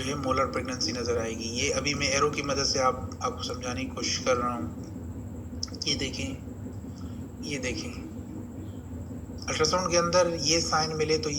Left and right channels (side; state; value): both; identical; correlation 1.00